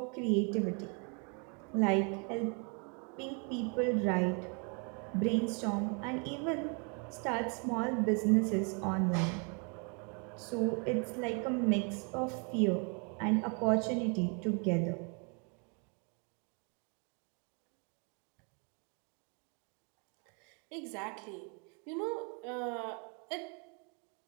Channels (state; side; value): quieter; left; 36.2 dB